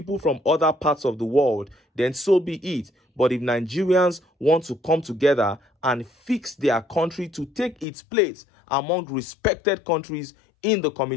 from other parts of the world, then so be it. But if Nigerians want to come together and fix their country to take its place among respected countries in the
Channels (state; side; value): drops out; right; at 7.9 s